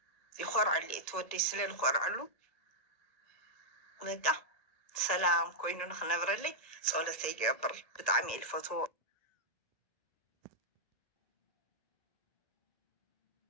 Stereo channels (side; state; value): right; late; 1.4 ms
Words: ይኮርዐሉ እየ ትወደይ ስለዝኮርዐሉ በቃ ሰላም ኮይኑ ንክነብረለይ ፀሎተይ ይገብር ብጣዕሚ እየ ዝፈትዎ።